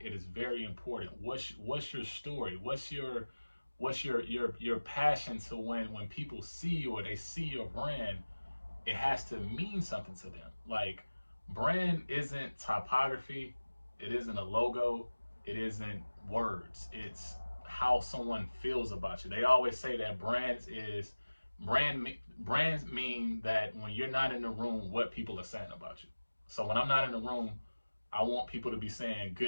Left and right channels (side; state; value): both; inverted; correlation -1.00